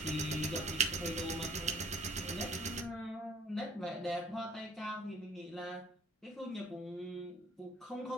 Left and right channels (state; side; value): normal; both; correlation 0.59